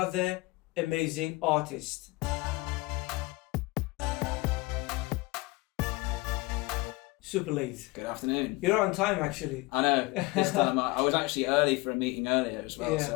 amazing artist. Superlate. Good afternoon. You're on time actually. I know, this time I was actually early for a meeting earlier as well, Yeah.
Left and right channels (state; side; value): quieter; right; 23.0 dB